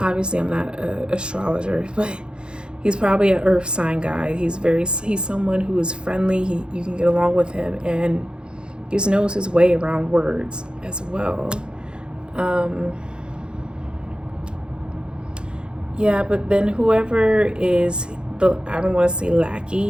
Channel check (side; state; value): left; late; 0.051 ms